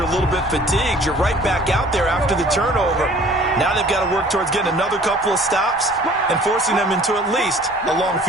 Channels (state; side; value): normal; both; correlation 0.52